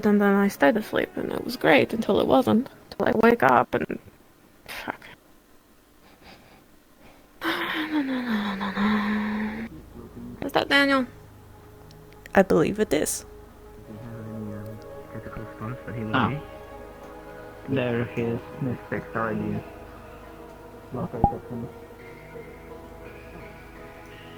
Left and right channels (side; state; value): both; identical; correlation 1.00